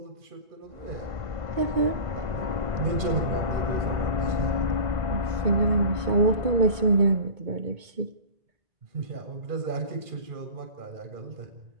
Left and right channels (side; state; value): left; late; 2.2 ms